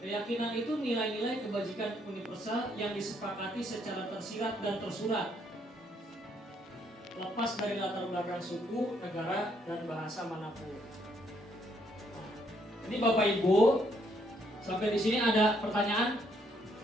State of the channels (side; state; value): both; normal; correlation 0.71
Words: itu nilai-nilai kebajikan universal yang disepakati secara tersirat dan tersurat, lepas dari latar belakang suku, negara, dan bahasa manapun. Ini Bapak Ibu, sampai di sini ada pertanyaan?